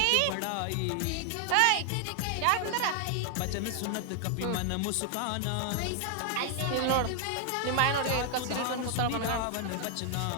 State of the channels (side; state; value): both; different; correlation 0.00